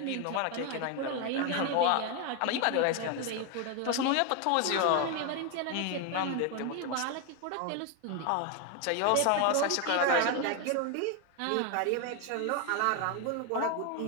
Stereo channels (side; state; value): both; different; correlation 0.01